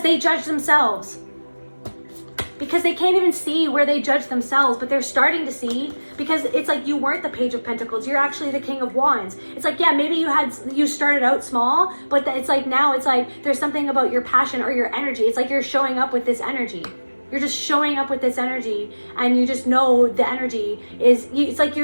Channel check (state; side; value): inverted; both; correlation -1.00